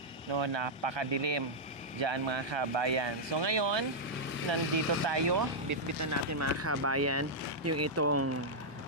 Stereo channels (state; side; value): normal; both; correlation -0.06